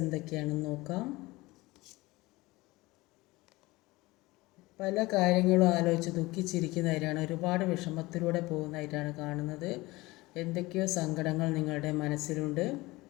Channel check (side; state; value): right; quieter; 20.9 dB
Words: നോക്കാം. പല കാര്യങ്ങളും ആലോചിച്ച് ദുഃഖിച്ചിരിക്കുന്നതായിട്ടാണ്, ഒരുപാട് വിഷമത്തിലൂടെ പോകുന്നതായിട്ടാണ് കാണുന്നത്. എന്തൊക്കെയോ സങ്കടങ്ങൾ നിങ്ങളുടെ മനസ്സിലുണ്ട്.